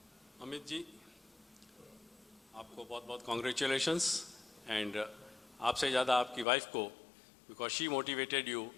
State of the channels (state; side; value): drops out; right; at 6.5 s